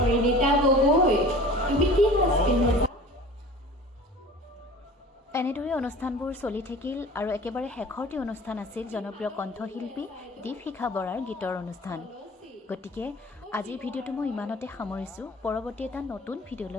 গগৈ, তুমি কি সাজ পিন্ধিছা? এনেদৰে অনুষ্ঠানবোৰ চলি থাকিল আৰু একেবাৰে শেষৰটি অনুষ্ঠান আছিল জনপ্ৰিয় কণ্ঠশিল্পী দীপশিখা বৰাৰ গীতৰ অনুষ্ঠান। গতিকে আজিৰ ভিডিঅ'টো মই ইমানতে সামৰিছোঁ। পৰৱৰ্তী এটা নতুন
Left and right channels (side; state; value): both; normal; correlation 0.42